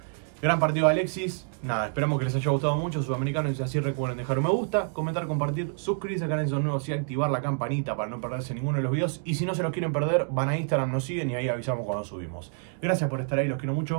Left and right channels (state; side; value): silent; left; 60 dB below the other